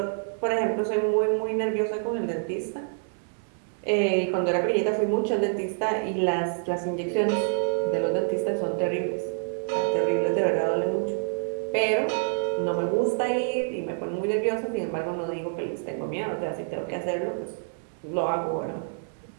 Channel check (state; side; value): silent; left; digital silence